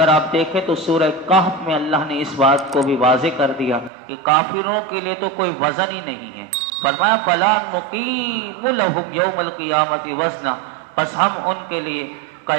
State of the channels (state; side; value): drops out; left; at 3.9 s